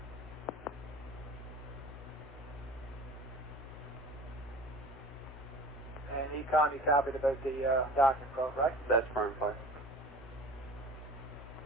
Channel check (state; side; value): normal; both; correlation 0.41